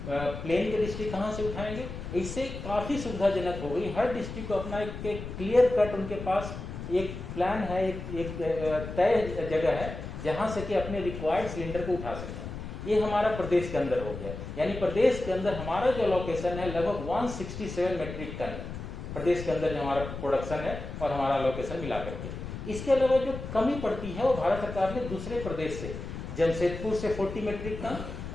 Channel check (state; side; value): noise; left; rumble, 8 dB below the sound